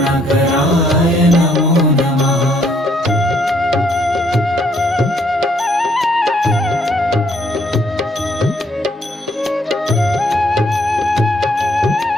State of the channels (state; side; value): normal; both; correlation 0.68